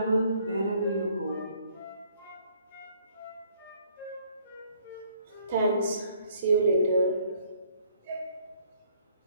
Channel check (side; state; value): both; inverted; correlation -0.63